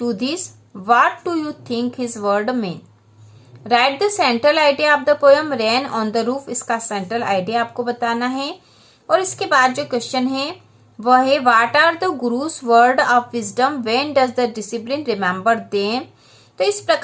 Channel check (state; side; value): identical; both; correlation 1.00